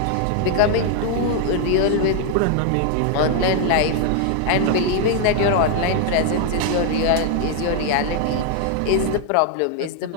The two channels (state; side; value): different; both; correlation 0.00